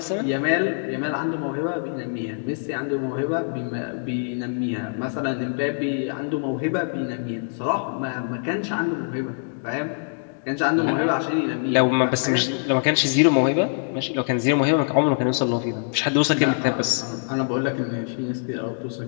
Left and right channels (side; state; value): right; silent; digital silence